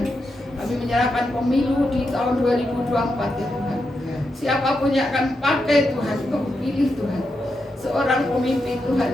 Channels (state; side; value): normal; both; correlation 0.85